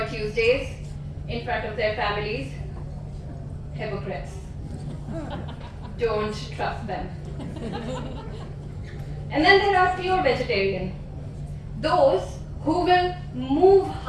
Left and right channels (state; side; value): identical; both; correlation 1.00